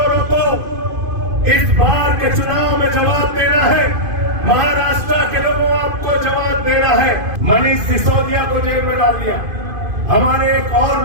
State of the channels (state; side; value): late; left; 2.5 ms